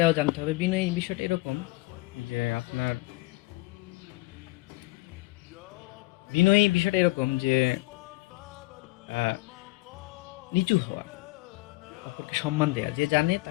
জানতে হবে। বিনয়ী বিষয়টা এরকম যে আপনার বিনয়ী বিষয়টা এরকম যে আহ, নিচু হওয়া, অপরকে সম্মান দেওয়া, যে জানে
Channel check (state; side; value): quieter; right; 21.4 dB